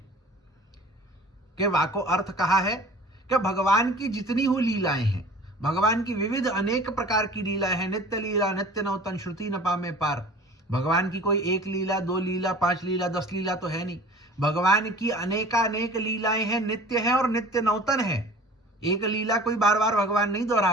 कि वाको अर्थ कहा है कि भगवान की जितनी हुई लीलाएं हैं, भगवान की विविध अनेक प्रकार की लीलाएं हैं, नित्य लीला नित्य नौतन श्रुति न पामे पार। भगवान की कोई एक लीला, दो लीला, 5 लीला, 10 लीला तो है नहीं। भगवान की अनेकानेक लीलाएं हैं, नित्य है और नित्य नौतन है। एक लीला कोई बार बार भगवान नहीं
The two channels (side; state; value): both; normal; correlation 0.44